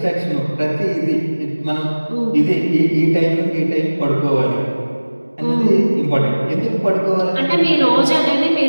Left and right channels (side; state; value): both; inverted; correlation -1.00